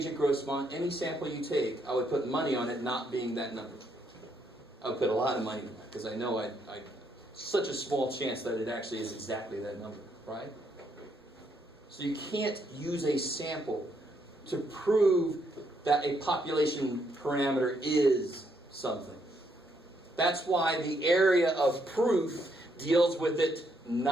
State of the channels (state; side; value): normal; both; correlation 0.75